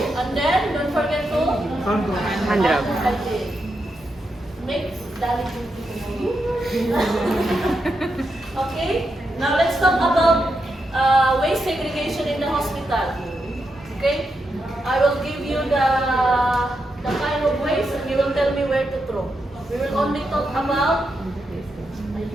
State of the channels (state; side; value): normal; both; correlation 0.85